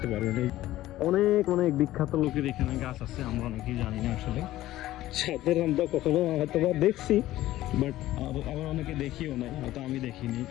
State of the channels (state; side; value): quieter; right; 15.2 dB